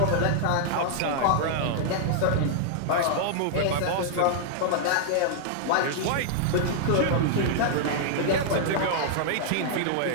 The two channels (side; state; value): both; different; correlation -0.01